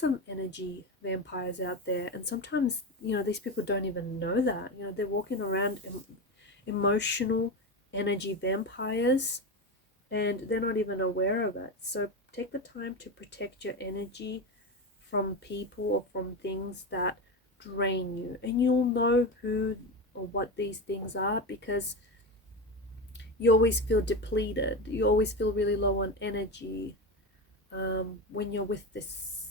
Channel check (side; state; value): both; normal; correlation 0.19